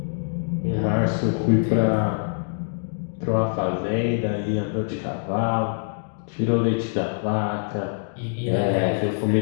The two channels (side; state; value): right; silent; digital silence